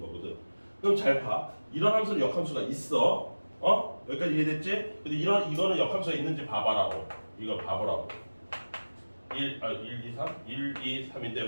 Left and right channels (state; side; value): inverted; both; correlation -1.00